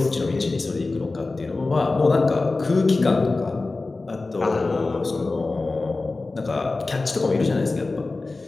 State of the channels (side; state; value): right; quieter; 3.5 dB